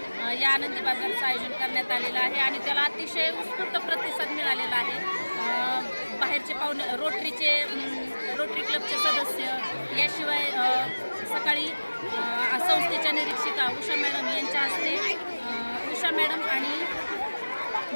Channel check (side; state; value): both; inverted; correlation -1.00